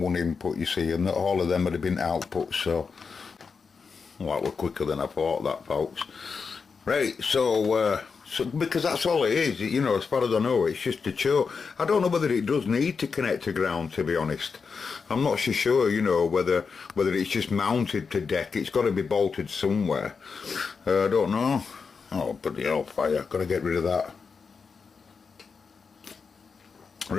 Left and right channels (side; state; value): right; quieter; 5.3 dB